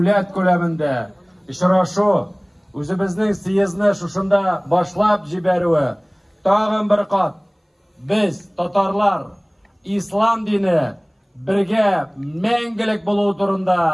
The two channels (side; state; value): both; identical; correlation 1.00